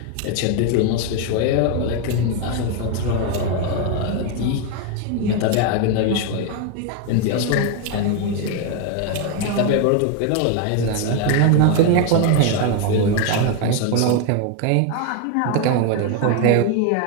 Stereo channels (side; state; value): both; different; correlation 0.01